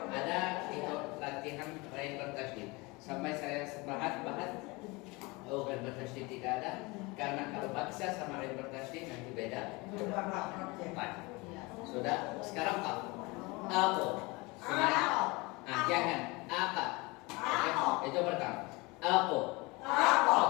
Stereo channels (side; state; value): right; quieter; 24.9 dB